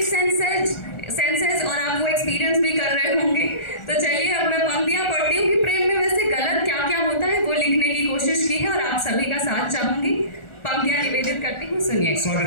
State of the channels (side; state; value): right; late; 1.4 ms